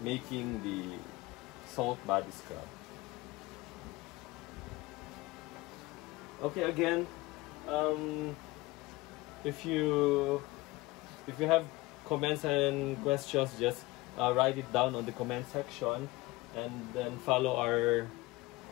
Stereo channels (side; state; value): right; quieter; 20.8 dB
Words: making the salt body scrub. Okay, again, if you have comments and questions, just write it down on the comment section, and then follow our